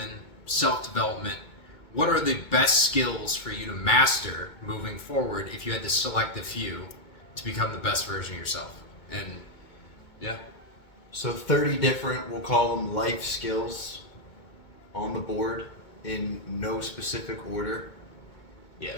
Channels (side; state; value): right; late; 2.2 ms